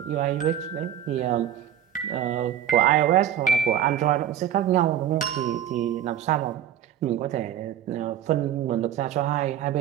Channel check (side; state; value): left; quieter; 10.3 dB